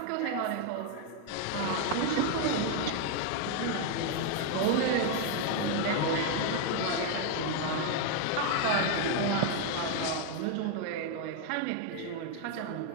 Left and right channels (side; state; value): both; different; correlation 0.01